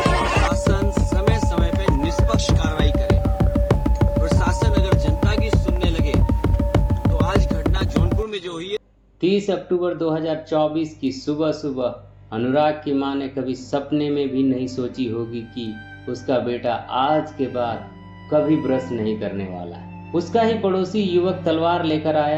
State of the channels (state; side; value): identical; both; correlation 1.00